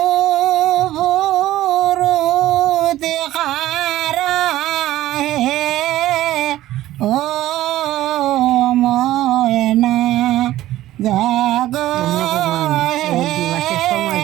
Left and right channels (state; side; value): quieter; left; 14.7 dB